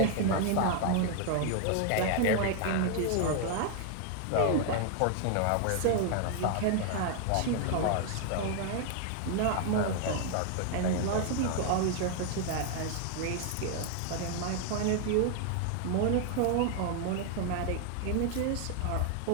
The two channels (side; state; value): both; different; correlation 0.00